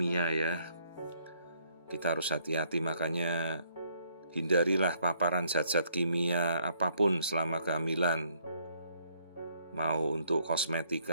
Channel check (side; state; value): both; inverted; correlation -0.68